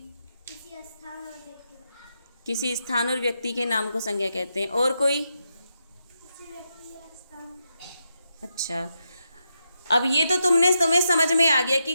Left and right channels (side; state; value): both; inverted; correlation -0.84